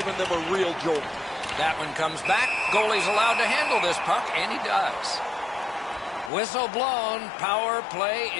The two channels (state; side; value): drops out; right; at 6.3 s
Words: them a real jolt. That one comes back. Goalie's allowed to handle this puck, and he does. Whistle blown. Power play